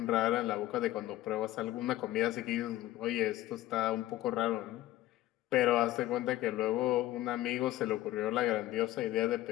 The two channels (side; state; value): right; quieter; 15.2 dB